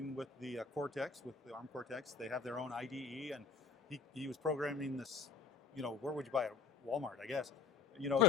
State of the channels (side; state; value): right; quieter; 4.6 dB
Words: with the Cortex, with the ARM Cortex. They have their own IDE, and he was programming this. Where would you buy it? Walmart, I guess.